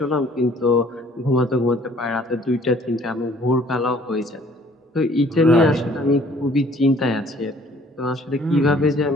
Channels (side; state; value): both; normal; correlation 0.57